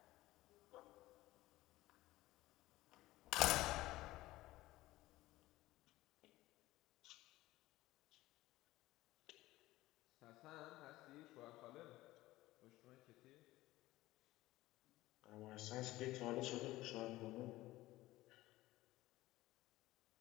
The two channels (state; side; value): quieter; right; 17.4 dB